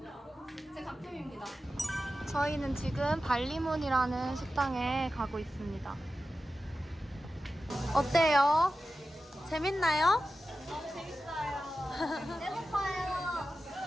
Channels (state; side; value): normal; both; correlation 0.93